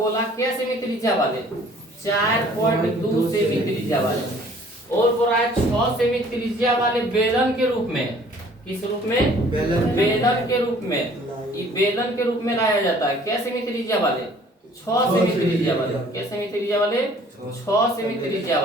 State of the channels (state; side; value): normal; both; correlation 0.54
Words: क्या सेमी त्रिज्या वाले 4.2 सेमी त्रिज्या वाले, और बोल रहा है 6 सेमी त्रिज्या वाले बेलन के रूप में। किस रूप में, बेलन के रूप में। ये बेलन के रूप में लाया जाता है। क्या सेमी त्रिज्या वाले 6 सेमी त्रिज्या वाले। क्या सेमी त्रिज्या वाले 6 सेमी त्रिज्या